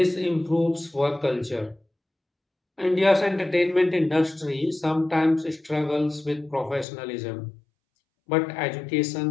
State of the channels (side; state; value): right; drops out; at 6.9 s